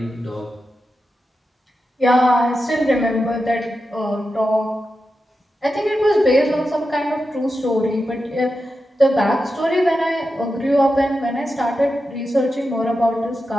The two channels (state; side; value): normal; both; correlation 0.90